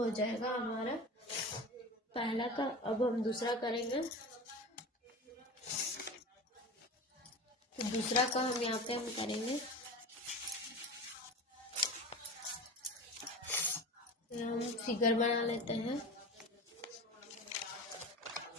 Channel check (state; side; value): normal; both; correlation 0.31